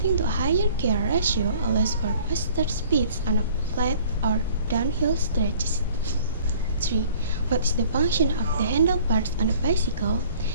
to a higher gear ratio allows for faster speeds on a flat or downhill stretches. 3. What is the function of the handlebars on a bicycle?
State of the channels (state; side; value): inverted; both; correlation -0.51